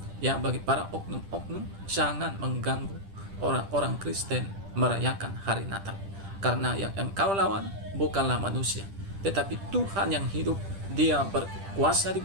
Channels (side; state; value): left; late; 10 ms